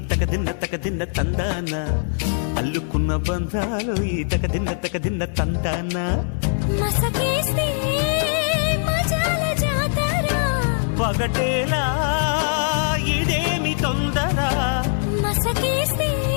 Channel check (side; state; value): right; silent; 61 dB below the other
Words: తగదిన్న తందానా అల్లుకున్న బంధాలు ఈ తగదిన్న తందానా మసకేస్తే మజాల జాతర పగటేలా ఇదేమి తొందర మసకేస్తే